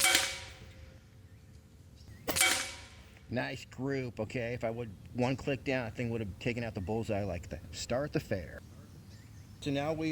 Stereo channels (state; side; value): identical; both; correlation 1.00